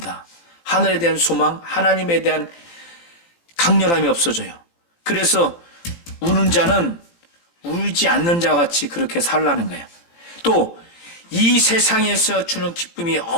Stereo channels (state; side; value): late; right; 18 ms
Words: 하늘에 대한 소망, 하나님에 대한 강렬함이 없어져요. 그래서 우는 자는 울지 않는 자 같이 그렇게 살라는 거예요. 또 이 세상에서 주는 기쁨이